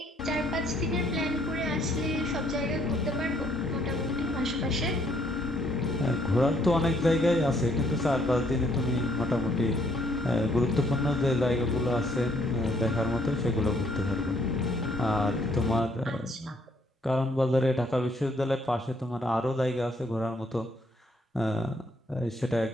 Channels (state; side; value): normal; both; correlation 0.68